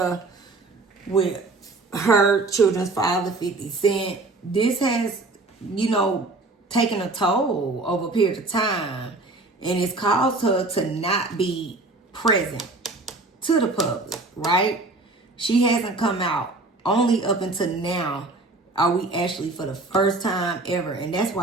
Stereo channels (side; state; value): left; quieter; 3.2 dB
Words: with her children's father, 50 Cent, this has, taken a toll over a period of time. And it's caused her to not be present to the public, right? She hasn't come out. Only up until now are we actually for the first time ever. And that's